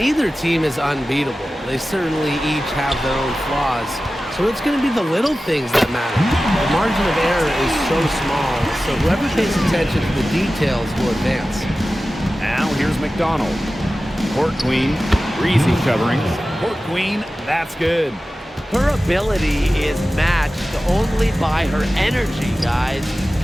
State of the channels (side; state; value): both; normal; correlation 0.95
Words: team is unbeatable. They certainly each have their own flaws. So it's going to be the little things that matter. The margin of error is so small, so whoever pays attention to the details will advance. Now here's McDonald. Court Queen, Breezy covering. Court Queen, that's good. Her ability is matched only by her energy, guys.